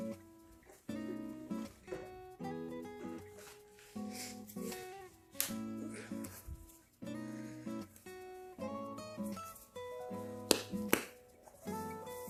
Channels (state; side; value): identical; both; correlation 1.00